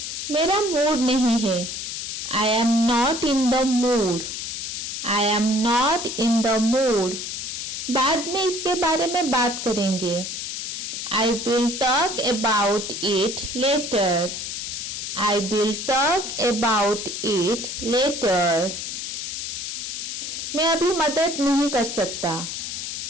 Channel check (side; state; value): left; noise; hiss, 5 dB below the sound